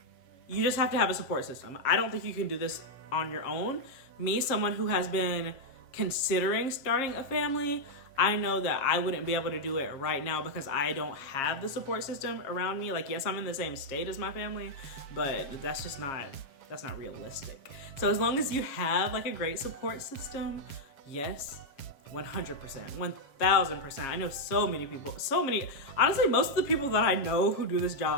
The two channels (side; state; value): right; late; 7.3 ms